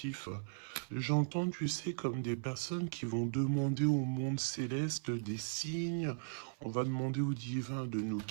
J'entends, tu sais, comme des personnes qui vont demander au monde céleste des signes. On va demander au divin de nous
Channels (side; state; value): left; silent; 53 dB below the other